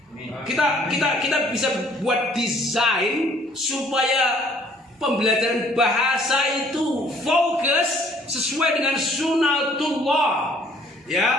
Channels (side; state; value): both; normal; correlation 0.60